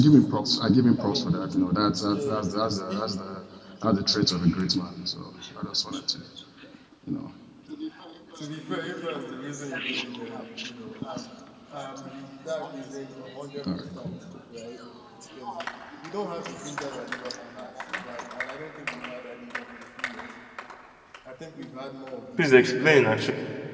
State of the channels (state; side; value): identical; both; correlation 1.00